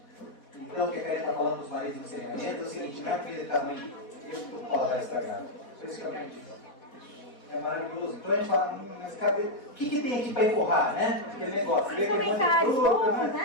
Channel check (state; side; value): late; right; 4.2 ms